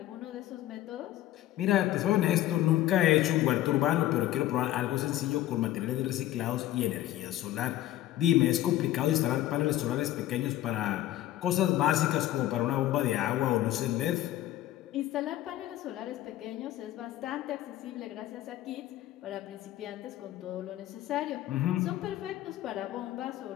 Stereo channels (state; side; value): quieter; right; 14.1 dB